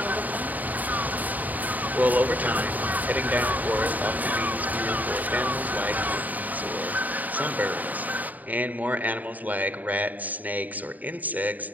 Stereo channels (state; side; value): late; left; 0.080 ms